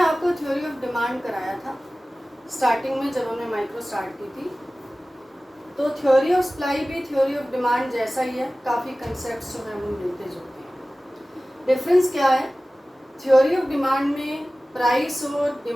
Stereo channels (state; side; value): normal; both; correlation 0.97